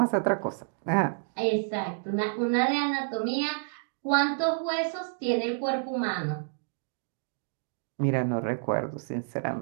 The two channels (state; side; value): silent; left; digital silence